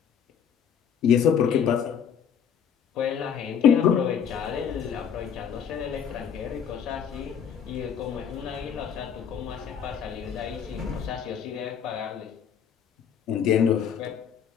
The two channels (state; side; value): quieter; right; 7.8 dB